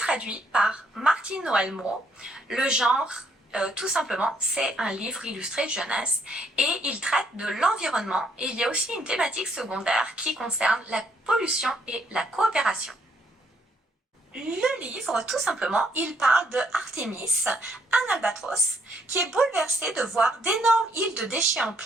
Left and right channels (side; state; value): both; normal; correlation 0.70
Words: par Martine Noël-Moreau. Le genre, tout simplement, c'est un livre illustré jeunesse et il traite de l'environnement. Et il y a aussi une thématique secondaire qui concerne la pollution et la coopération. Le livre, tout simplement, il parle de Artemis, un albatros, qui est bouleversé de voir d'énormes îles de déchets en